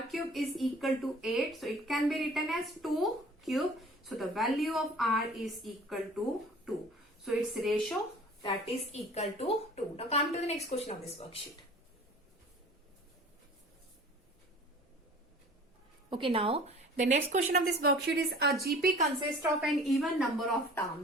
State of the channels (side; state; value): both; normal; correlation 0.46